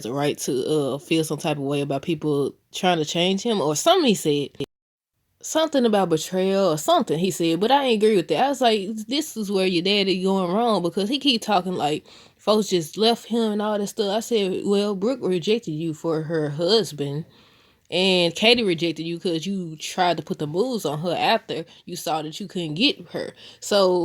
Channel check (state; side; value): identical; both; correlation 1.00